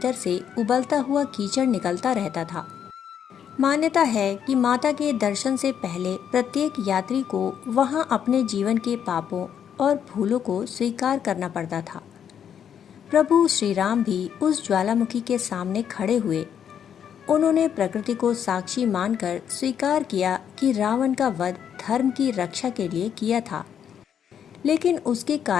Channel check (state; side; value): quieter; right; 8.6 dB